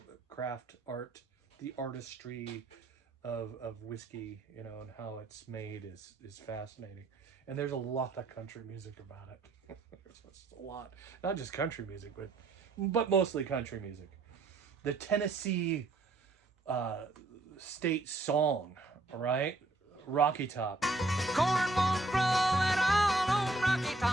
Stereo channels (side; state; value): left; quieter; 3.1 dB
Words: craft art. The artistry of whiskey, you know, and how it's made is fascinating. And there's a lot of country music about it. There's a lot. Not just country music, but mostly country music. The Tennessee state song, all right? Rocky Top. Corn won't grow at all on Rocky